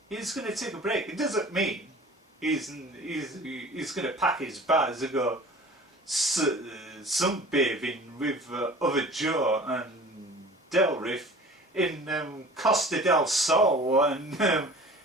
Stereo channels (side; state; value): both; normal; correlation 0.43